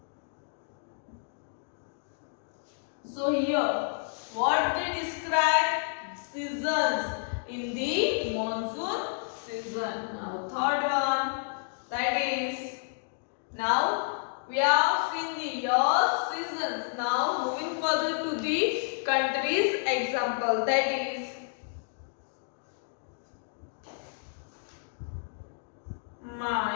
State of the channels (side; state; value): right; silent; digital silence